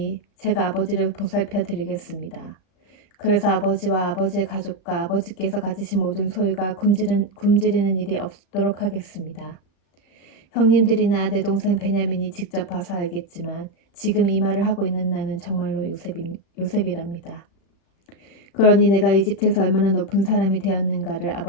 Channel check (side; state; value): right; late; 35 ms